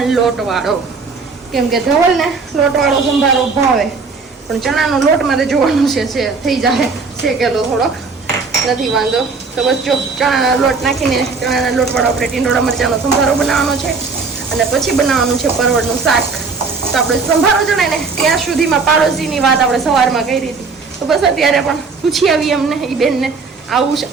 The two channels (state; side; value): quieter; left; 4.6 dB